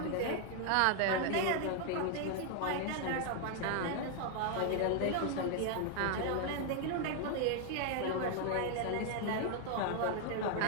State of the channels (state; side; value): different; both; correlation 0.00